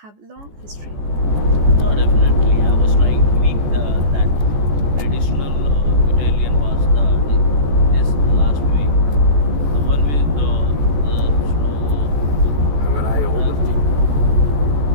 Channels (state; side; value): late; left; 14 ms